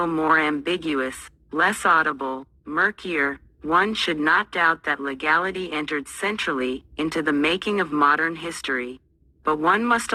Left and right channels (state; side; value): identical; both; correlation 1.00